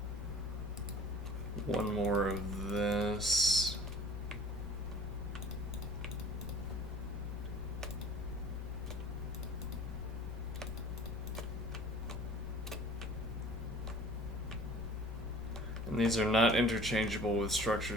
one more of this. And these are not interchangeable with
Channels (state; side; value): normal; both; correlation 0.48